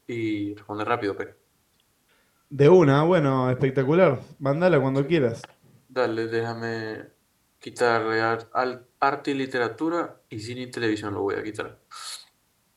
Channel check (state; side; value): identical; both; correlation 1.00